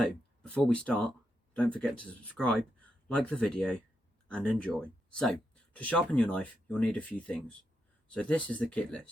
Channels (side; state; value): both; normal; correlation 0.84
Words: before we start, don't forget to subscribe, like the video and enjoy. So to sharpen your knife you'll need a few things. So this is the kit